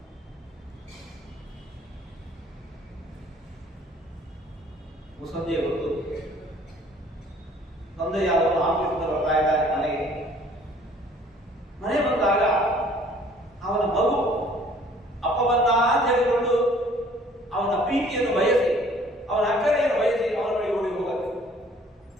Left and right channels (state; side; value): normal; both; correlation 0.56